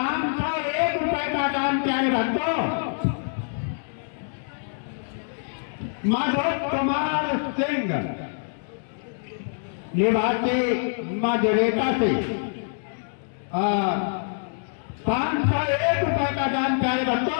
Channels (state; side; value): silent; right; 61 dB below the other